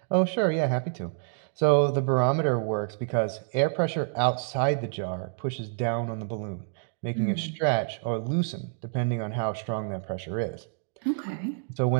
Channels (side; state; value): left; silent; digital silence